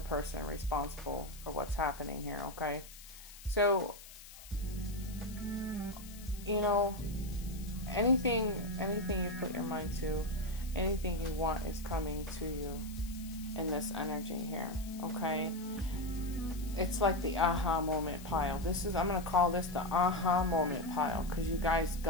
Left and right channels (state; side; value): noise; left; hiss, 17 dB below the sound